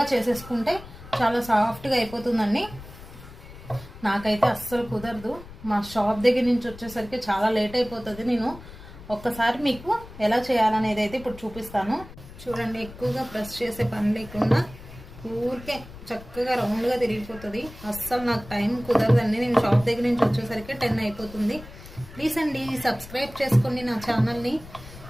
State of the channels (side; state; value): left; noise; rumble, 16 dB below the sound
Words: చేసేసుకుంటే చాలా సాఫ్ట్గా అయిపోతుందండి. నాకైతే అస్సలు కుదరదు. మా షాప్ దగ్గర నుంచి వచ్చేసరికి చాలా లేట్ అయిపోతుంది. నేను ఒక్కసారి మీకు ఎలా చేయాలనేది అయితే ఇప్పుడు చూపిస్తాను. చూడండి, ఎక్కువగా ప్రెస్ చేసే పని లేకుండా ఊరికే చక్కగా రౌండ్గా తిరిగిపోతుంది. అస్సలు నాకు టైం కుదరదండి. నేను షాప్ దగ్గర నుంచి వచ్చేసరికి 10 అయిపోతుంది. ప్లీజ్ అండి సబ్స్క్రైబ్ చేసుకోండి నా ఛానల్ని.